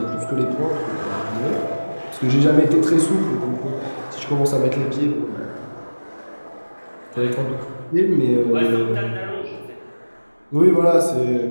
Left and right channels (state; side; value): inverted; both; correlation -1.00